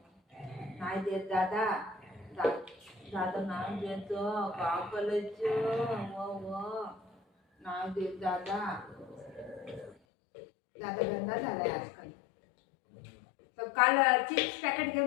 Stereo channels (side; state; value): right; drops out; at 10.0 s